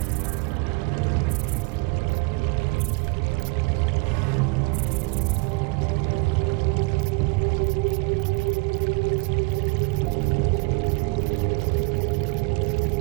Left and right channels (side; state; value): left; quieter; 27.9 dB